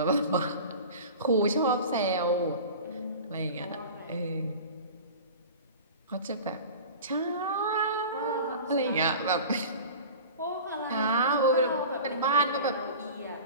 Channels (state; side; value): inverted; both; correlation -0.36